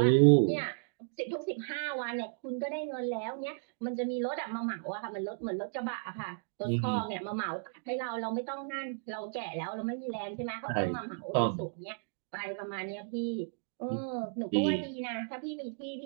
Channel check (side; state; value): left; silent; digital silence